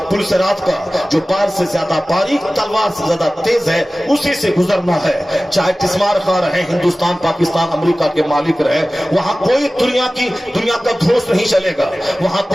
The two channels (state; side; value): normal; both; correlation 0.97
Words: सिरात का, जो बाल से ज्यादा बारीक, तलवार से ज्यादा तेज है, उसी से गुजरना है। चाहे तिस्मार खा रहे, हिंदुस्तान, पाकिस्तान, अमेरिका के मालिक रहे, वहां कोई दुनिया का धोस नहीं चलेगा। वहां